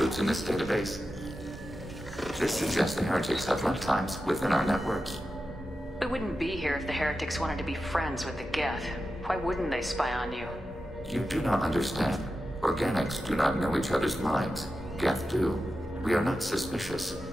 in this database. This suggests the Heretics have runtimes within our networks. We wouldn't be here if the Heretics wanted to be friends with the Geth. Why wouldn't they spy on you? You do not understand. Organics do not know each other's minds. Geth do. We are not suspicious.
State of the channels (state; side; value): normal; both; correlation 0.91